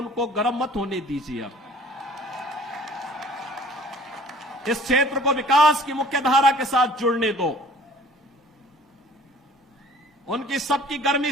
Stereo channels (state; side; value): normal; both; correlation 0.50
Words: गर्म मत होने दीजिए। अब इस क्षेत्र को विकास की मुख्य धारा के साथ जुड़ने दो। उनकी सबकी गर्मी